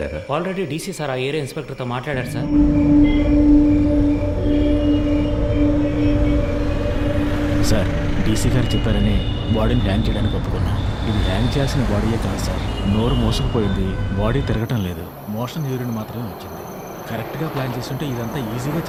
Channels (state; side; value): identical; both; correlation 1.00